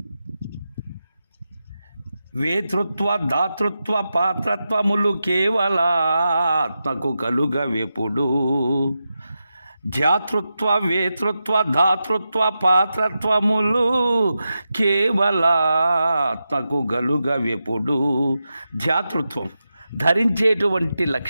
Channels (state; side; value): inverted; both; correlation -0.90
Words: వేతృత్వ దాతృత్వ పాత్రత్వములు కేవలాత్మకు కలుగవెప్పుడు. ధ్యాతృత్వ వేతృత్వ ధాతృత్వ పాత్రత్వములు కేవలాత్మకు గలుగవెప్పుడు. ధ్యాతృత్వం ధరించేటువంటి